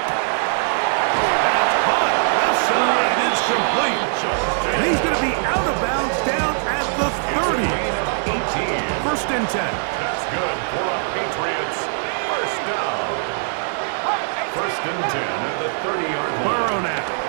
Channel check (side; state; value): left; silent; digital silence